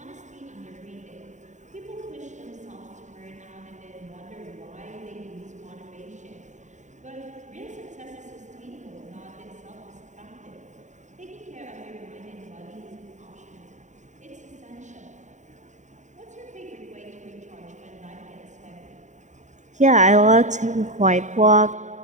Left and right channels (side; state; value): left; late; 0.35 ms